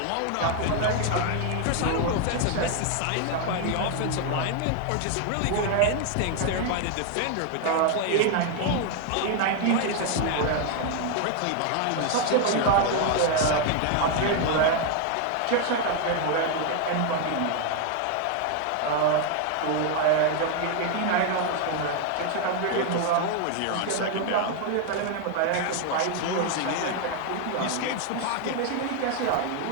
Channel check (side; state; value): both; different; correlation 0.01